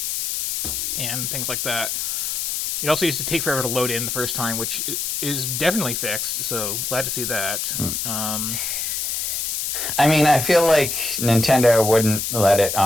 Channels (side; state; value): left; noise; hiss, 1 dB below the sound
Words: and things like that. It also used to take forever to load in the first time, which is definitely fixed. So glad to see that. I mean, I feel like Nintendo wouldn't let it